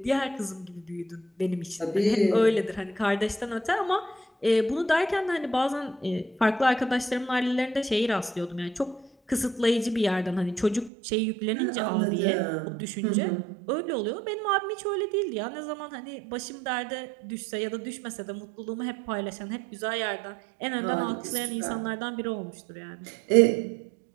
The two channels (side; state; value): left; drops out; at 10.9 s